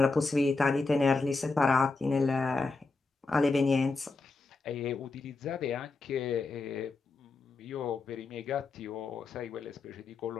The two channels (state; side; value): quieter; right; 3.8 dB